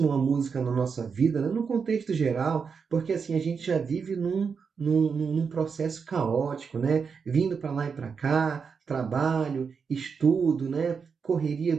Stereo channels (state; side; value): quieter; left; 5.8 dB